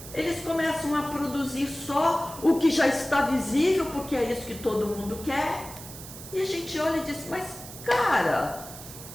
Eles começam a produzir só o que já está visível, porque é isso que todo mundo quer. E a gente olha e diz, mas cara,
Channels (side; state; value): right; noise; hiss, 14 dB below the sound